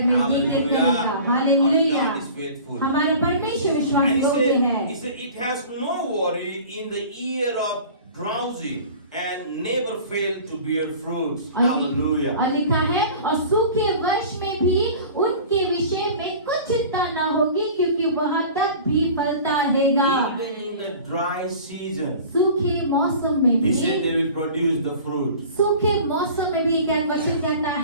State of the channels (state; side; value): inverted; both; correlation -0.41